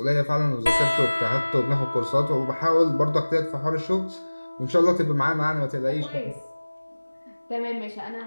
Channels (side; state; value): both; inverted; correlation -1.00